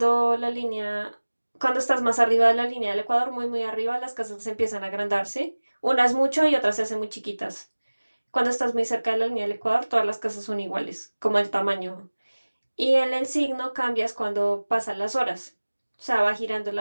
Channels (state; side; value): inverted; both; correlation -1.00